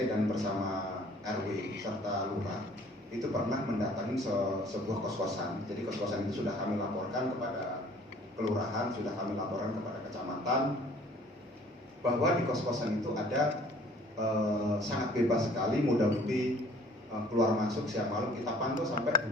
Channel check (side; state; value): both; normal; correlation 0.54